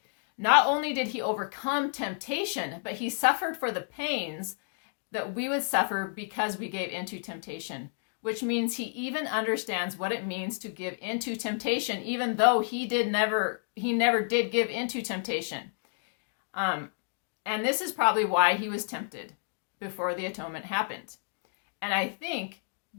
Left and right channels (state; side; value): silent; right; digital silence